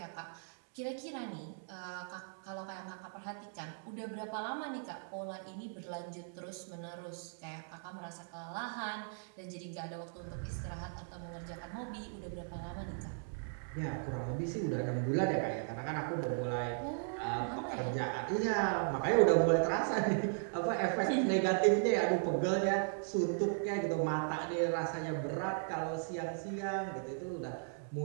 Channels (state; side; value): silent; left; digital silence